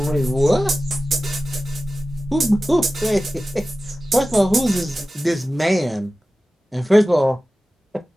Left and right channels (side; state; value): both; normal; correlation 0.95